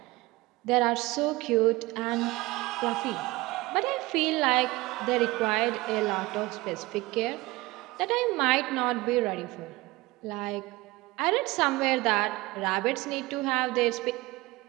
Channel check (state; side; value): quieter; left; 20.8 dB